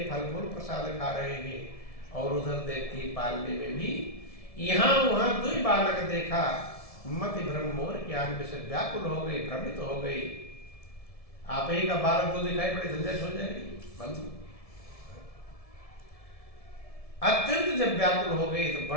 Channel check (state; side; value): late; right; 1.7 ms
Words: फल फूल प्रसाद खा रहे हैं और उधर देखती है पालने में भी यहाँ वहां दुई बालक देखा। मति भ्रम मोर के आगे से व्याकुल हो गई, भ्रमित हो गई। आप ही का बालक तो दिखाई पड़े, झंझट हो जाएगी। बंधु अत्यंत जब व्याकुल हो गई तो